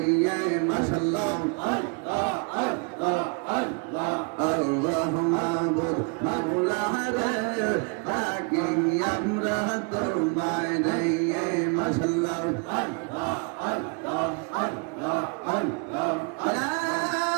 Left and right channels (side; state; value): left; quieter; 34.8 dB